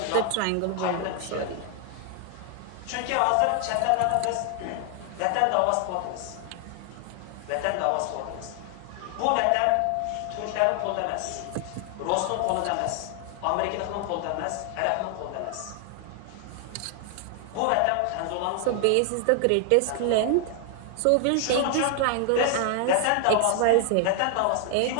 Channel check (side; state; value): both; different; correlation 0.00